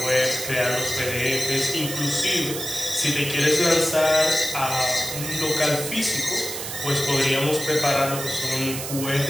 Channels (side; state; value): right; noise; hiss, 6 dB below the sound